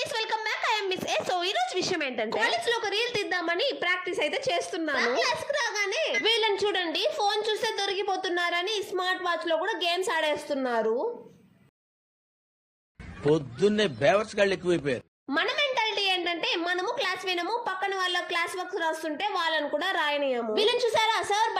welcome back. I'm miss A. So ఈ రోజు విషయం ఏంటంటే కాలేజ్ లో ఒక రీల్ తీద్దామని ప్రాక్టీస్ అయితే చేస్తున్నాను. క్లాస్ కి రాగానే వీళ్ళని చూడండి, ఫోన్ చూస్తే దొరికిపోతున్నారని స్మార్ట్ వాచ్ లో కూడా గేమ్స్ ఆడేస్తున్నారు. పొద్దున్నే బేవర్స్ గాళ్ళు ఎక్కువైపోయారు. మన మెంటాలిటీ ఏంటంటే మనము క్లాస్ వినము, పక్కన వాళ్ళ క్లాస్ వర్క్ రాస్తుంటే వాళ్ళని కూడా రాయనీయము. వీళ్ళని చూసారా, సార్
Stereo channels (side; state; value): both; identical; correlation 1.00